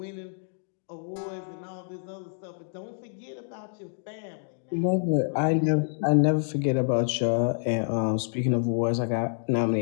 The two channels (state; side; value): silent; right; digital silence